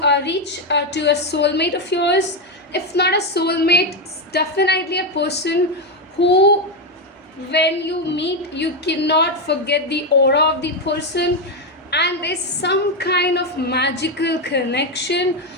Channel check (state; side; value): normal; both; correlation 0.07